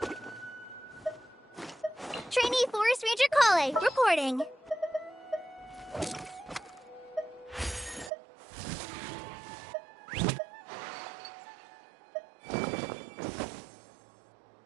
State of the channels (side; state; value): left; drops out; at 8.1 s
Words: Trainee Forest Ranger Kale, reporting.